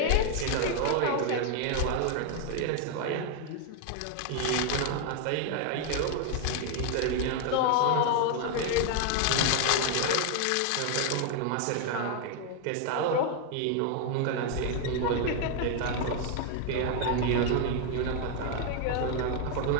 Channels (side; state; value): both; different; correlation 0.00